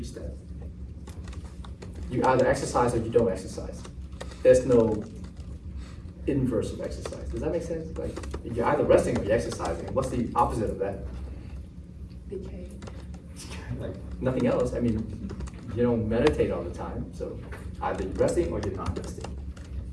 that. You either exercise or you don't exercise. There's no inverse of exercise. Does that make sense? Like, you're either resting or you're exercising. What's the opposite of that? Like, nothing else. I mean, you don't meditate all the time, so either you're resting or you're not resting.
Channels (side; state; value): both; identical; correlation 1.00